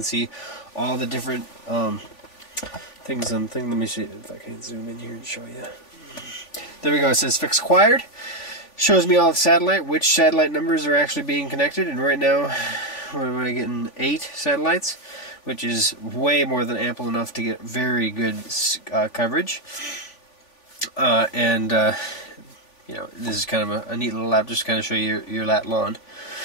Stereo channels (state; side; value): late; right; 3.5 ms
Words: see all the different things. Let me see if I can zoom in here and show you. There we go. It says fix acquired. Shows me all the which satellite numbers are actually being connected, and right now we're getting 8 satellites, which is way more than ample enough to get very good coverage. This is kind of a neat little app just to kind of show you your lat lawn.